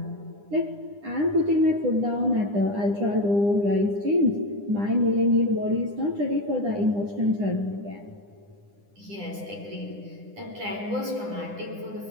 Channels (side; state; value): left; late; 9.9 ms